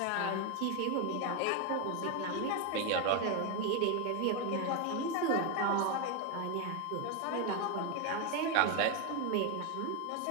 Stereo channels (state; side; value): different; both; correlation 0.02